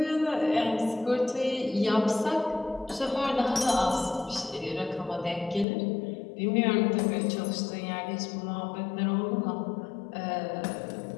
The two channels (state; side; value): drops out; right; at 5.7 s